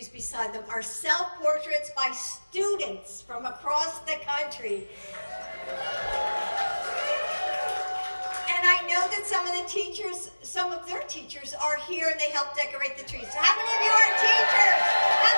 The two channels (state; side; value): inverted; both; correlation -1.00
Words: beside them are self-portraits by students from across the country. And I know that some of their teachers are here and they help decorate the trees. So how many of you are teachers? How